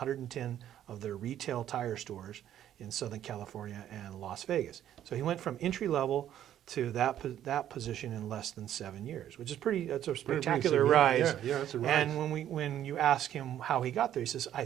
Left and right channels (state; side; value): quieter; left; 11.2 dB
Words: of their retail tire stores in Southern California and Las Vegas. So he went from entry level to that position in less than 7 years, which is that's a spectacular rise. Yeah, that's a rise. And when you ask him how he got there, he says, I